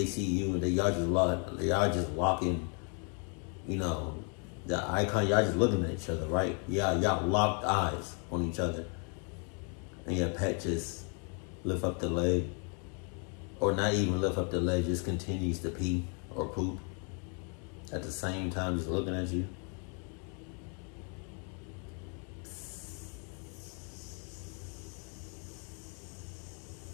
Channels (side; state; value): right; quieter; 39.0 dB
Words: see you, and y'all just walking, you know, the icon, y'all just looking at each other, right? Yeah, y'all locked eyes on each other, and your pet just lift up the leg, or not even lift up the leg, just continues to pee or poop at the same time, just looking at you.